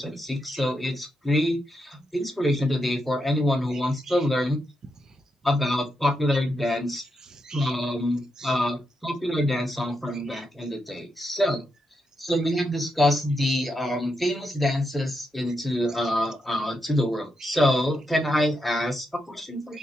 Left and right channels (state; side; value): normal; both; correlation 0.83